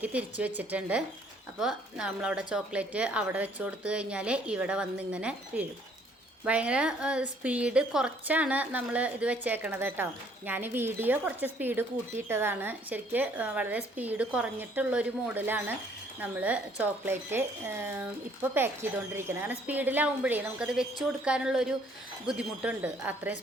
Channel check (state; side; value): normal; both; correlation 0.62